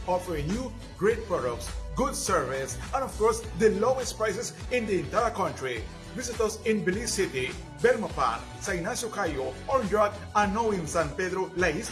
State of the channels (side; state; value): both; identical; correlation 1.00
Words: offering you great products, good service, and of course, the lowest prices in the entire country. Visit us in Belize City, Bermapan, San Ignacio Cayo, Orange and now in San Pedro, La